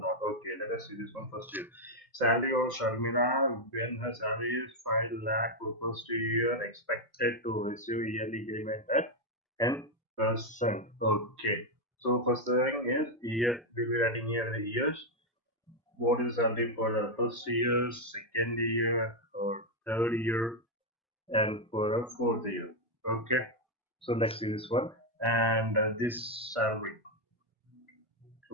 Okay, let us see this one first here. Salary of Sharmila when her salary is 5 lakh for first year expected to receive yearly increment at 10%. Okay. So first thing is year, we'll be writing here the years. What is salary for the first year, second year, or third year, and for the fourth year? Okay, so let's see this one and this salary,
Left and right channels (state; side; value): normal; both; correlation 0.02